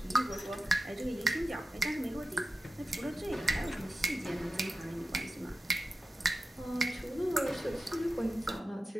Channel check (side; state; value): both; normal; correlation 0.93